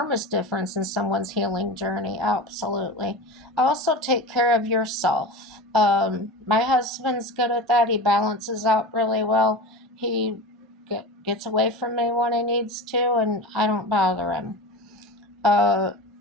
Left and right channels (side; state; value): both; normal; correlation 0.30